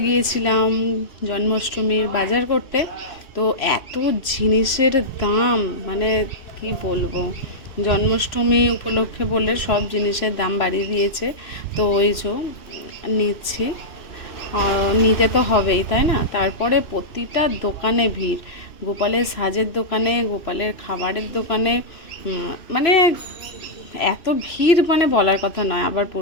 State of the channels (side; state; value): right; late; 3.0 ms